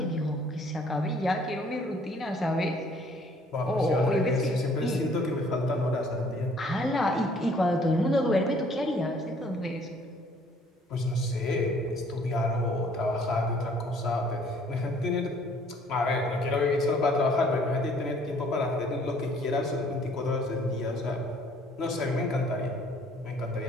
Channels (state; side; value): normal; both; correlation 0.59